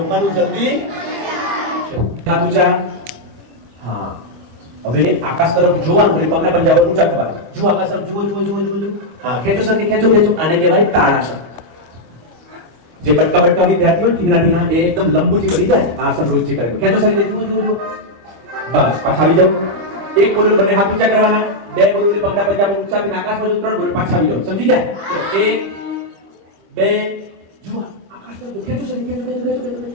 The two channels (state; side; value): late; left; 25 ms